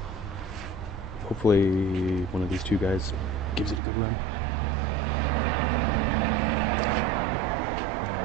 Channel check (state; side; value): drops out; left; at 3.8 s